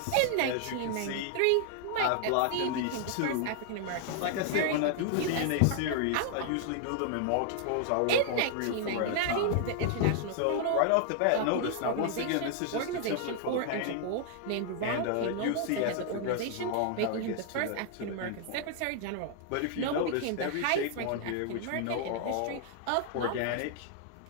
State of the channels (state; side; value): different; both; correlation 0.00